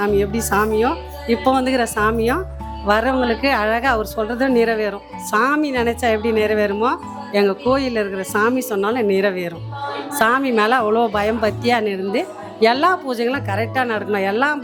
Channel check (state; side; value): identical; both; correlation 1.00